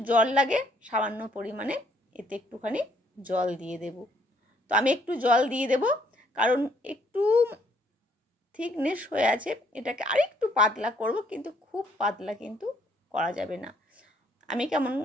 জল লাগে সামান্য পরিমাণে এতে একটুখানি জল দিয়ে দেব। তো আমি একটু জল দিয়ে দেব, কারণ একটু থিকনেস হয়ে আছে, এটাকে আরেকটু পাতলা করব, কিন্তু খুব পাতলা কিন্তু করা যাবে না। আমি কেমন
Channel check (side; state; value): both; normal; correlation 0.66